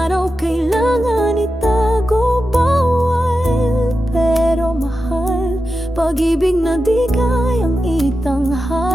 kailangan itago. Bawal, pero mahal, pag-ibig na di kayang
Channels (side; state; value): both; normal; correlation 0.91